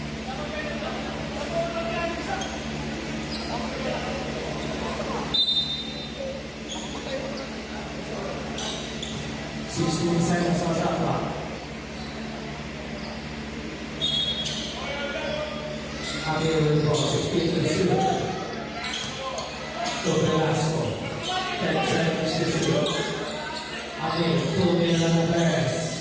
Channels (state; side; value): identical; both; correlation 1.00